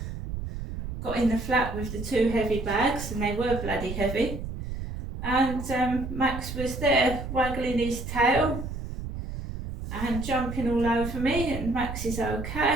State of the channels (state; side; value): noise; right; rumble, 7 dB below the sound